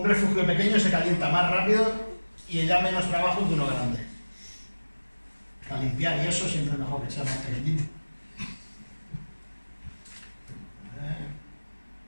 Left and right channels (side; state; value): both; inverted; correlation -1.00